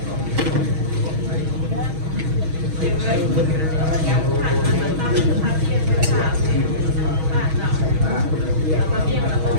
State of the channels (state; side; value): late; left; 6.3 ms